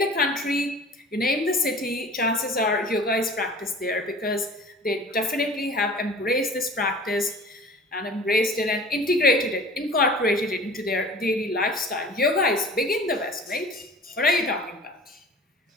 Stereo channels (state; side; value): normal; both; correlation 0.43